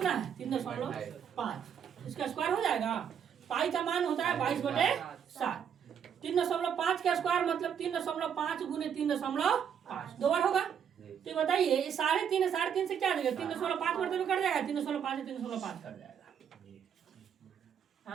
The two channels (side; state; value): left; quieter; 8.1 dB